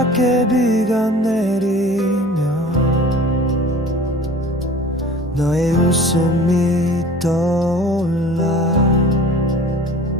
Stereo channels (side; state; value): both; normal; correlation 0.44